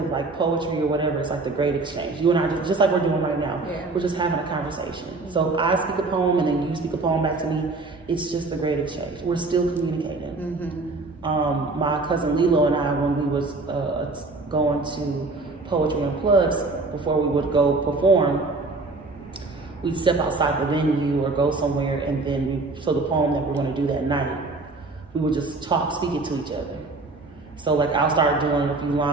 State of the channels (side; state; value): left; quieter; 3.5 dB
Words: like poetry or whatever, it's like the great exchange. You and I, just like we're doing right now, we're just having a conversation. So I speak a poem and then you speak a poem back to me. It's just the great exchange. We're still communicating. My cousin Lilo and I, when we was going to Poetry Unplugged, before we would go perform, we'd step outside the venue or go somewhere, and then so the poem that we're going to do that night, we would just talk, speak it to each other. So like, I'll start doing a few